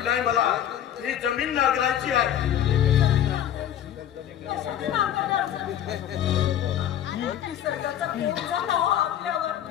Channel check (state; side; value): quieter; right; 10.6 dB